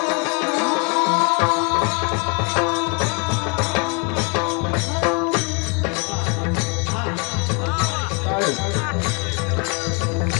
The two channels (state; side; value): quieter; right; 34.3 dB